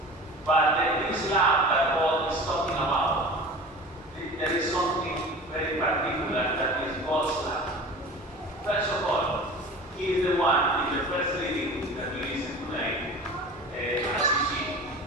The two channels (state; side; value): normal; both; correlation 0.37